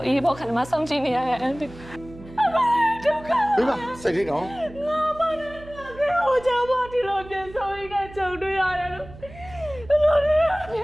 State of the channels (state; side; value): noise; right; hum, 18 dB below the sound